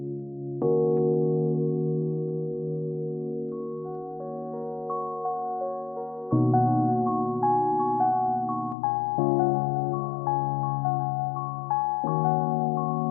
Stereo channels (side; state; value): right; drops out; at 8.8 s